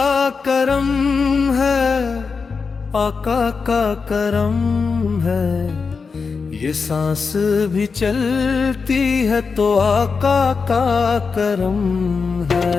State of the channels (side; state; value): right; quieter; 5.0 dB